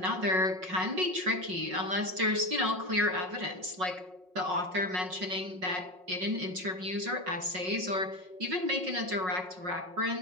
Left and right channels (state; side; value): late; left; 5.5 ms